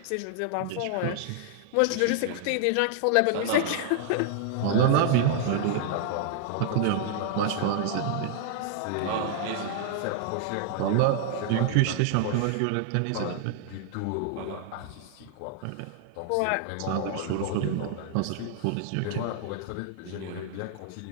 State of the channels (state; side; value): different; both; correlation 0.00